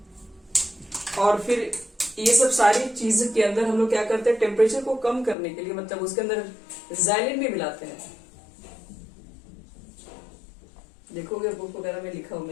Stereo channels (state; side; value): drops out; right; at 5.4 s